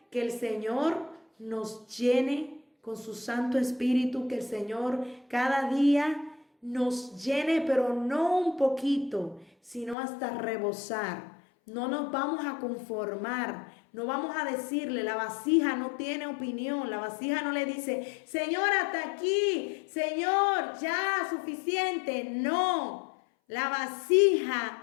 que el Señor nos llene con su Santo Espíritu, que el Señor cada día nos llene, pero no un poquito, sino hasta rebosar. No nos vamos a conformar, no vamos a decirle, la vasija no tiene opinión, la vasija no le dice, Señor, hasta aquí, Señor, ya, suficiente. No, la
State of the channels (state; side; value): drops out; right; at 10.0 s